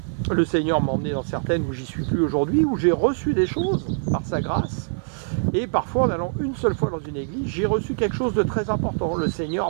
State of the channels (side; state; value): left; silent; digital silence